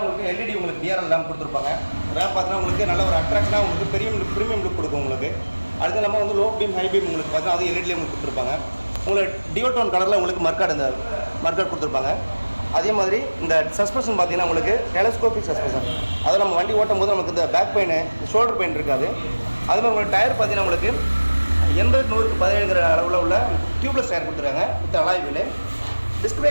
உங்களுக்கு எல்இடி உங்களுக்கு டிஆர்எல் லேம்ப் கொடுத்துருப்பாங்க. ரேம்ப் பார்த்தீங்கன்னா உங்களுக்கு நல்ல ஒரு அட்ராக்ஷனாக உங்களுக்கு ப்ரீமியம் லுக் கொடுக்கும் உங்களுக்கு. அதுக்கு இல்லாமல் வந்து லோ பீம், ஹை பீம் உங்களுக்கு பார்த்தீங்கன்னா அது எல்இடிலேயே உங்களுக்கு கொடுத்துருப்பாங்க. உங்களுக்கு டியூல் டோன் கலரில் உங்களுக்கு மர்க்கார்டு கொடுத்துருப்பாங்க. அதே மாதிரி இந்த சஸ்பென்ஷன் பார்த்தீங்கன்னா உங்களுக்கு டெலஸ்கோபிக் சஸ்பென்ஷன். அதை நம்ம வண்டி ஓட்டும் போது நமக்கு இந்த பேக் பெயின், ஷோல்டர் பெயின் இருக்காது. அது மாதிரி உங்களுக்கு டயர் பார்த்தீங்கன்னா உங்களுக்கு 80-100க்கு 17 அளவில் உள்ள டியூப்லெஸ் டயர் கொடுத்துருக்காங்க with alloy wheel. Disc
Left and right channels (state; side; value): inverted; both; correlation -1.00